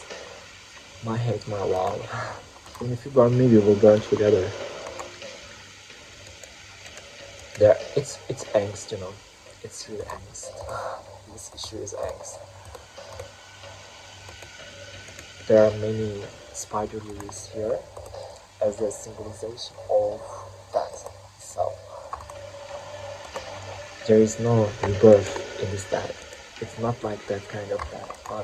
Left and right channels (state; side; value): identical; both; correlation 1.00